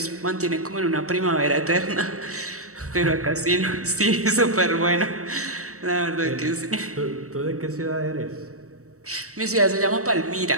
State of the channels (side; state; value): left; late; 0.65 ms